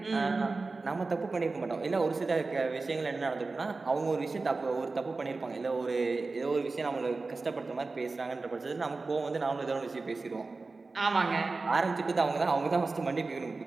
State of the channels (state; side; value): quieter; left; 3.8 dB